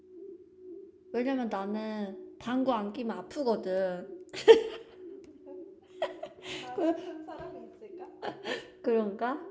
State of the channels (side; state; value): both; identical; correlation 1.00